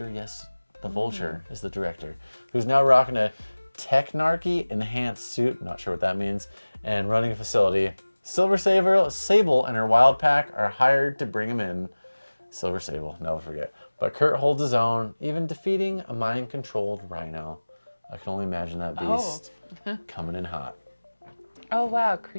Yes, the Vulture is the director, who's now rocking a Technarchy enhanced suit. Not sure what that means, and running a facility. Silver Sable and her wild pack are hired to bring him in. Silver Sable, never forget. But Kurt holds his own, even defeating a mind-controlled Rhino. I can only imagine that beast coming in hot. Oh wow,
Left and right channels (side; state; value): both; inverted; correlation -1.00